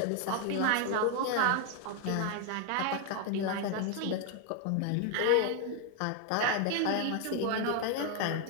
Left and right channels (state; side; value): different; both; correlation 0.00